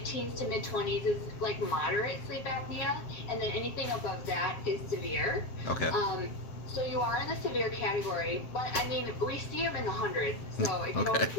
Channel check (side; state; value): right; late; 7.6 ms